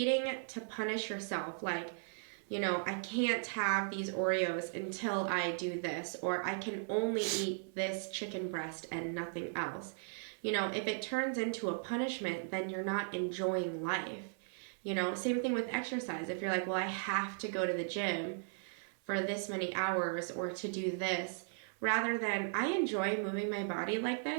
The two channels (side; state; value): left; silent; 53 dB below the other